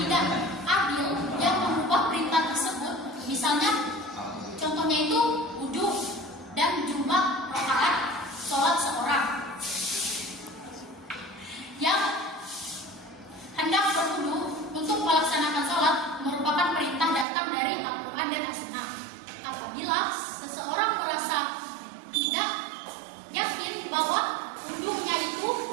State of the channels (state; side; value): drops out; left; at 17.2 s